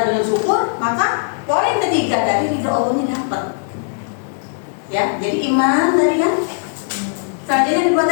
dengan syukur, maka poin ketiga dari ridho Allahnya dapat. Ya, jadi iman tadi kan. Selanjutnya dibuat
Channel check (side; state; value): right; silent; digital silence